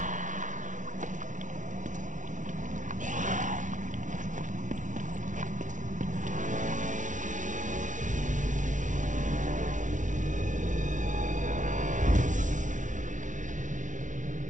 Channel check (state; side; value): late; left; 0.37 ms